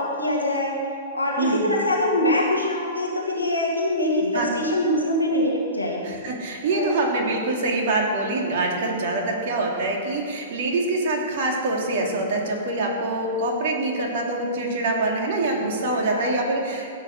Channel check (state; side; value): inverted; both; correlation -0.35